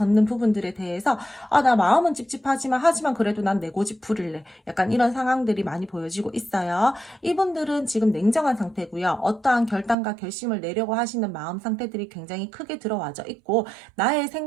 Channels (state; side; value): drops out; left; at 10.0 s